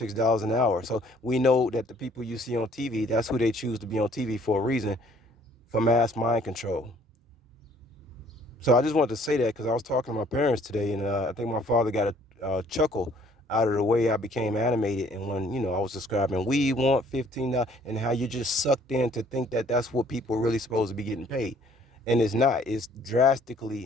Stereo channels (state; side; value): normal; both; correlation 0.60